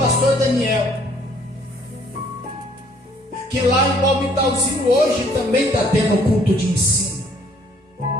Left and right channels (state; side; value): normal; both; correlation 0.61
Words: Daniel que lá em Palmitalzinho hoje também está tendo culto de ensino.